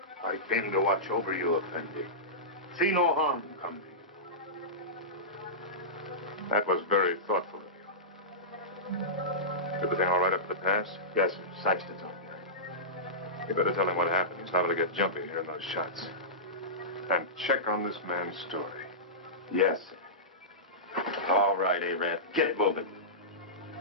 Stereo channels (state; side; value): normal; both; correlation -0.17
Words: I came to watch over you, Effendi. See no harm come to you. That was very thoughtful of you. Everything all right up at the pass? Yes, sir. Saxton's on there. You better tell him what happened. He's liable to get jumpy hearing those shots. And check on this man's story. Yes, sir. All right, Arab. Get moving.